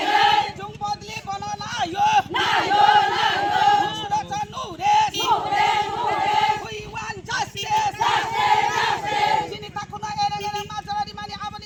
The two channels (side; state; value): both; identical; correlation 1.00